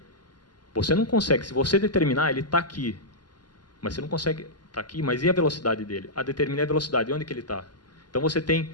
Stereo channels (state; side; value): late; right; 0.71 ms